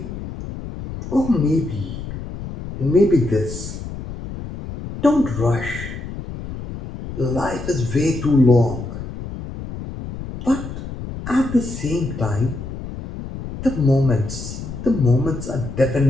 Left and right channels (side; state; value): left; noise; rumble, 9 dB below the sound